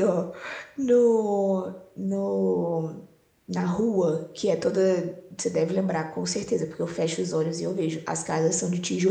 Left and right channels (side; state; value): both; identical; correlation 1.00